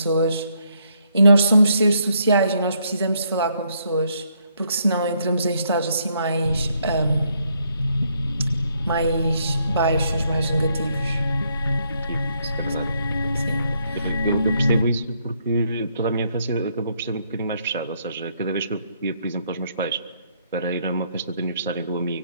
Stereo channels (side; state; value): both; inverted; correlation -0.73